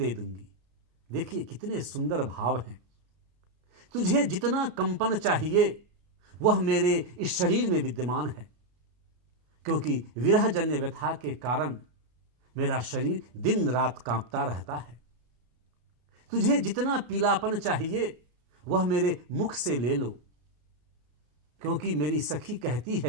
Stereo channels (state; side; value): late; left; 34 ms